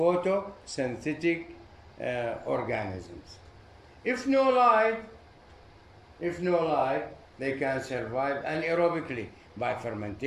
organisms. If no light, they can survive anaerobically by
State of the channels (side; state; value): both; identical; correlation 1.00